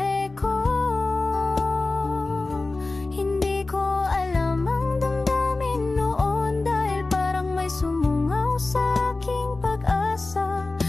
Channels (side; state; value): right; quieter; 3.3 dB